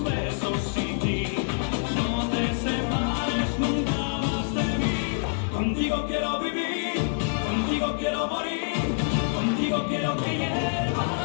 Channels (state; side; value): silent; right; digital silence